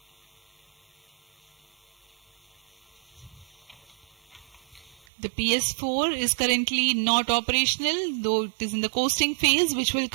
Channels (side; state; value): left; drops out; at 5.0 s